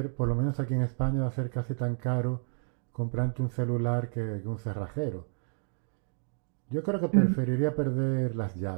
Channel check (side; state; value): left; silent; digital silence